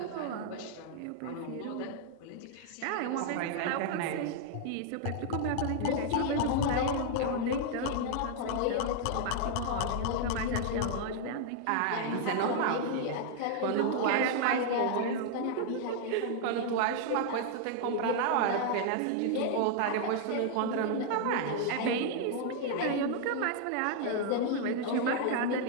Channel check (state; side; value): different; both; correlation 0.00